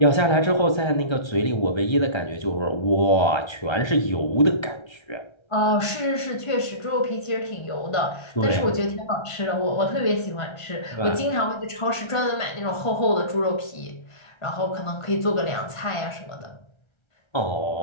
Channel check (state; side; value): late; right; 1.3 ms